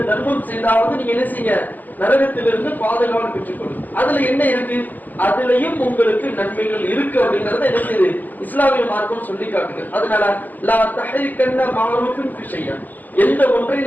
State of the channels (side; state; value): right; late; 0.084 ms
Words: தர்மம் செய்தாவது நீங்க என்ன செய்ய, நரகத்திலிருந்து பாதுகாவல் பெற்றுக்கொள்ளும். அதுல என்ன இருக்கு? அதுலயும் உங்களுக்கு நன்மைகள் இருக்கு அப்படிங்கறத என்ன செய்யுது இஸ்லாமிய மார்க்கம் சொல்லி காட்டுகிறது. அதனால லா தஹ்ரிகன்ன மஅரூஃபின் ஃபி ஷைஆ, எந்த ஒன்றை